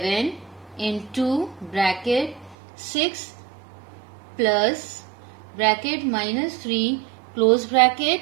into bracket 6 plus bracket minus 3 close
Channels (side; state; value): left; drops out; at 2.6 s